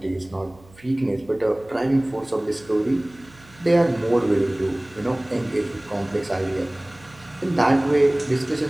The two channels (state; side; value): noise; right; hum, 26 dB below the sound